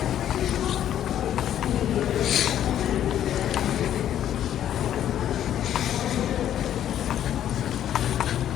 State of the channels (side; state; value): right; quieter; 10.9 dB